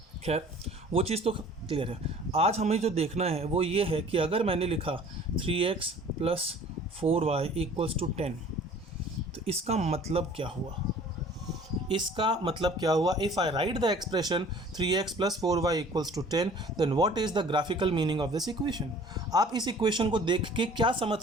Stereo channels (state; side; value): normal; both; correlation 0.49